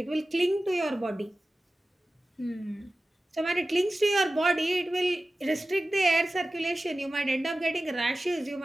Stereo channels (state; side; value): normal; both; correlation 0.95